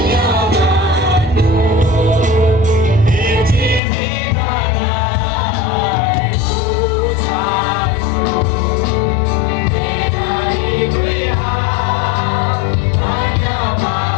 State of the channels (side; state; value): right; drops out; at 3.8 s